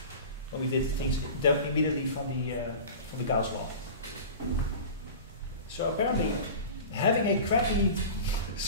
When we did things immediately from the Gauss law. So apparently, having a crappy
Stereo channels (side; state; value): both; inverted; correlation -0.34